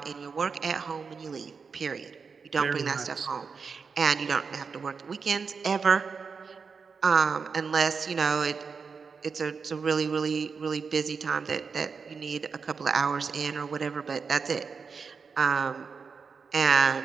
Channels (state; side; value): quieter; left; 5.4 dB